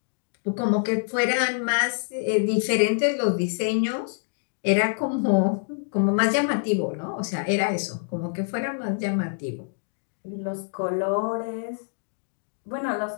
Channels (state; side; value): silent; right; 61 dB below the other